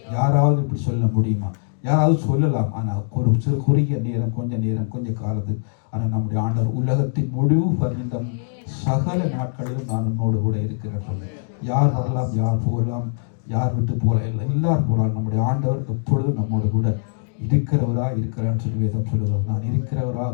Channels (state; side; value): silent; right; digital silence